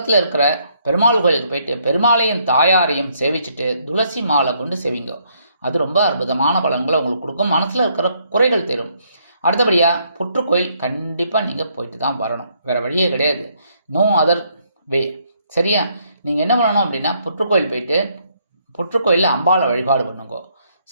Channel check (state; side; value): inverted; both; correlation -0.71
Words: இருக்கிற பெருமாள் கோயிலுக்கு போயிட்டு பெருமாளையும் தாயாரையும் சேவிச்சுட்டு துளசி மாலை கொண்டு சேவிங்கோ. அது ரொம்ப அற்புதமான பலன்களை உங்களுக்கு கொடுக்கும், மனசில் இருக்கிற குறைகள் தரும். அடுத்தபடியாக புற்றுக்கோயில் கண்டிப்பாக நீங்கள் போயிட்டு தான் வரணும், வேறு வழியே கிடையாது. No other way. சரியா? நீங்கள் என்ன பண்ணணும் அப்படின்னா புற்றுக்கோயில் போயிட்டு புற்றுக்கோயிலில் அம்பாளை வழிபாடு பண்ணுங்கோ.